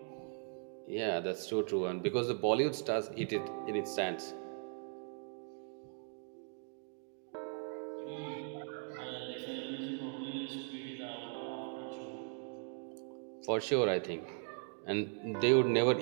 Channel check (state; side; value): silent; left; 52 dB below the other